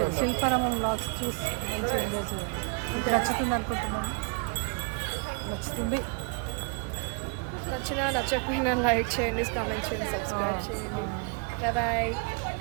శిల్పారామం వ్లాగ్స్ చూసి మంచిగా ఎంజాయ్ చేయండి. అంతే. నచ్చుతుంది అనుకుంటున్నాను. నచ్చుతుంది. నచ్చినా నచ్చకపోయినా లైక్ చేయండి, కామెంట్ చేయండి, సబ్స్క్రైబ్ చేయండి. Bye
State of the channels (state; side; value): quieter; left; 37.9 dB